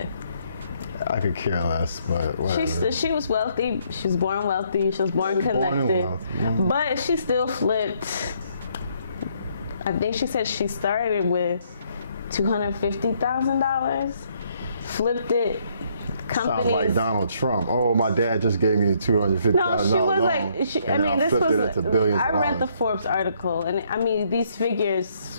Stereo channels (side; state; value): both; inverted; correlation -0.69